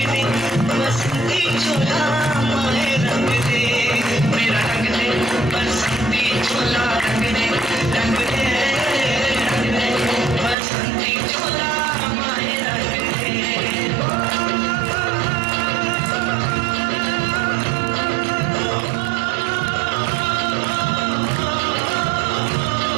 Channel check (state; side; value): drops out; left; at 10.6 s